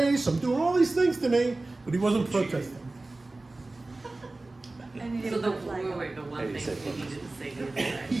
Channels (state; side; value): quieter; left; 3.1 dB